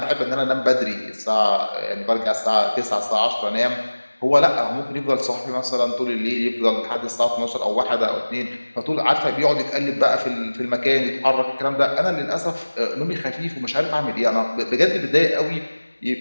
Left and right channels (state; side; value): inverted; both; correlation -1.00